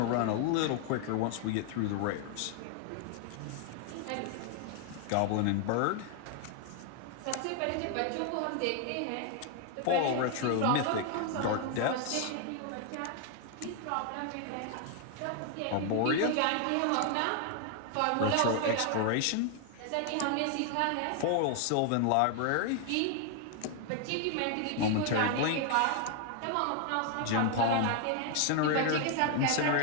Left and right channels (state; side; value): different; both; correlation 0.00